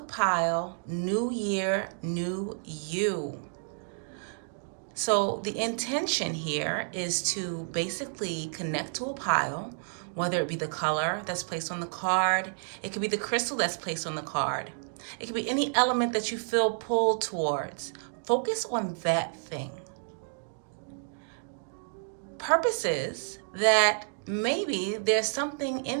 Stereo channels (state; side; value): silent; left; digital silence